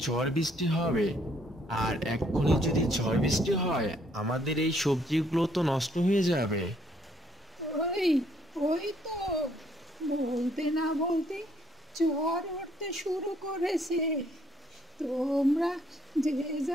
ঝড় বৃষ্টি হবে। আর এক্ষুনি যদি ঝড় বৃষ্টি হয় আমাদের এই সবজিগুলো তো নষ্ট হয়ে যাবে। ওই ওই তো বলতে না বলতে ঝড় উঠতে শুরু করেছে। তোমরা যে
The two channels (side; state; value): both; normal; correlation 0.67